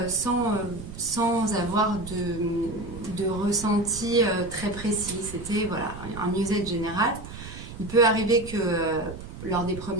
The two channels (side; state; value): right; noise; rumble, 12 dB below the sound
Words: sans avoir de ressenti très précis. C'était voilà, un mieux-être général. Il peut arriver que lors des